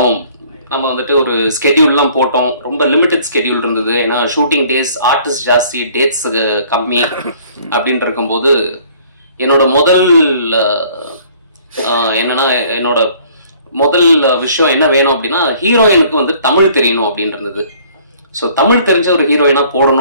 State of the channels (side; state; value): both; inverted; correlation -0.56